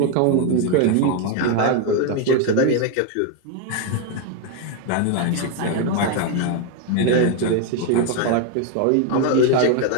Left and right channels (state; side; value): different; both; correlation 0.01